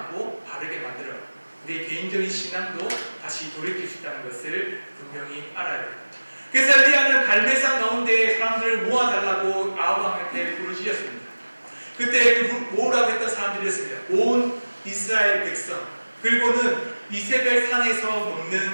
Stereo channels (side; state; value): both; inverted; correlation -1.00